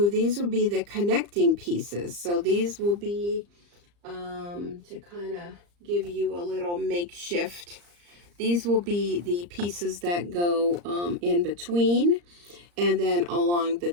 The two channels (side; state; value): left; late; 34 ms